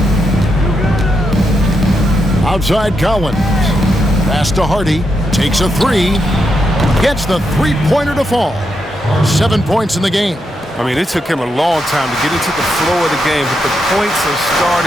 Outside Collins. Pass to Hardy. Takes a 3. Gets the three-pointer to fall. 7 points in the game. I mean, it took him a long time to get into the flow of the game, but the points are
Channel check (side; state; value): both; normal; correlation 0.83